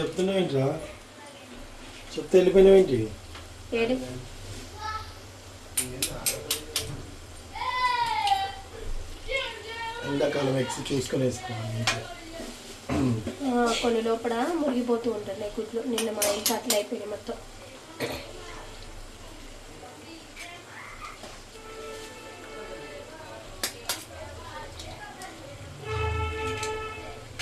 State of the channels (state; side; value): identical; both; correlation 1.00